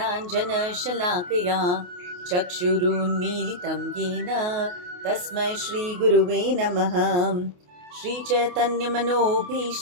चक्षुरुन्मीलितं येन तस्मै श्रीगुरुवे नमः।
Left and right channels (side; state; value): left; late; 28 ms